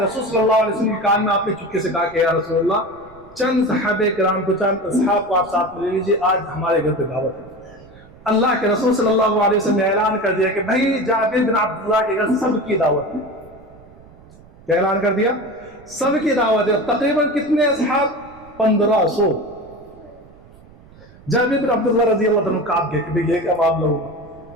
صلی اللہ علیہ وسلم کے کان میں، آپ نے چپکے سے کہا کہ یا رسول اللہ چند صحابہ کرام کو، چند اصحاب کو آپ ساتھ لے لیجیے، آج ہمارے گھر پہ دعوت ہے. اللہ کے رسول صلی اللہ علیہ وسلم نے اعلان کر دیا کہ بھائی جابر بن عبداللہ کے گھر سب کی دعوت ہے. کیا اعلان کر دیا؟ سب کی دعوت ہے. تقریباً کتنے اصحاب؟ 1500. جابر بن عبداللہ رضی اللہ عنہ کاپ گئے کہ بھئی یہ کیا معاملہ ہوگا،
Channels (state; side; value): noise; right; rumble, 24 dB below the sound